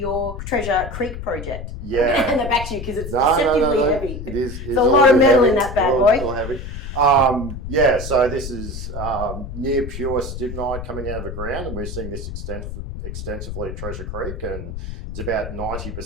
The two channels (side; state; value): left; noise; rumble, 8 dB below the sound